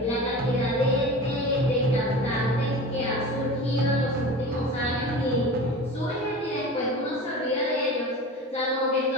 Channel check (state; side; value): normal; both; correlation 0.34